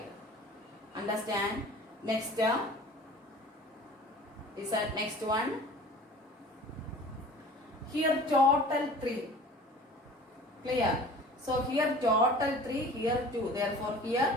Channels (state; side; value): normal; both; correlation 0.44